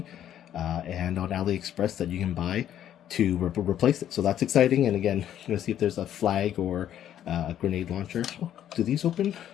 and on AliExpress that you can buy to replace it. So that's exciting. And again, I'm going to see if there's a flag or a grenade launcher. Oh, do these open?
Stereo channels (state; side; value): quieter; right; 10.8 dB